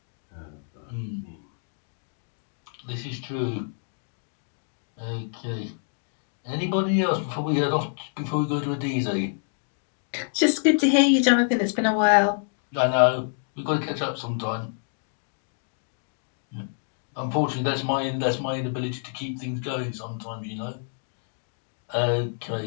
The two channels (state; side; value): silent; right; digital silence